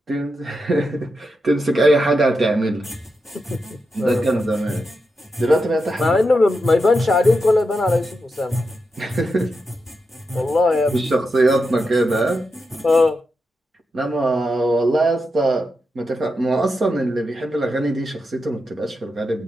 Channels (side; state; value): both; normal; correlation 0.87